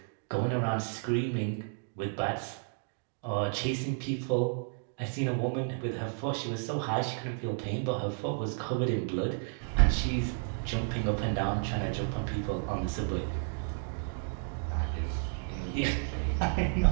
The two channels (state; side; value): silent; left; 56 dB below the other